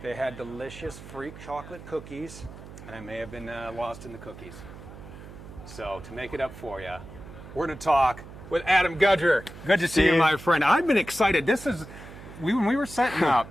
they had delicious freak chocolate cookies, and I may have been lost in the cookies. So to make it up for you, we're gonna talk with Adam Gudger. Good to see you, my friend. I've been excited. When we were setting up,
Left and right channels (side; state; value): right; noise; hum, 15 dB below the sound